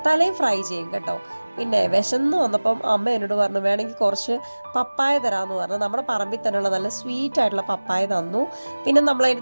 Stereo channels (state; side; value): inverted; both; correlation -1.00